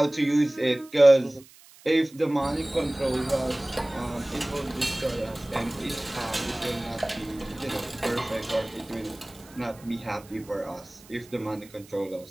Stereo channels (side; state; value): right; noise; hiss, 23 dB below the sound